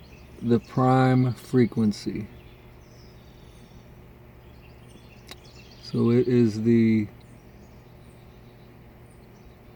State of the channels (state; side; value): identical; both; correlation 1.00